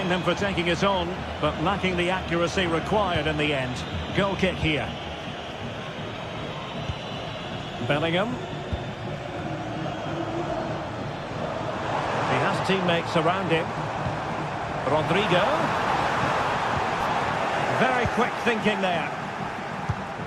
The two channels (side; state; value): both; identical; correlation 1.00